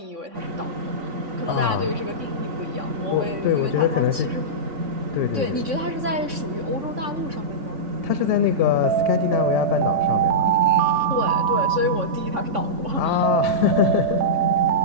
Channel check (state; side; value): late; left; 3.6 ms